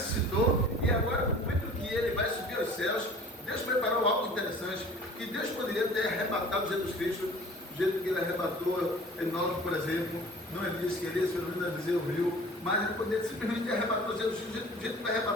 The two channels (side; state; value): both; normal; correlation 0.46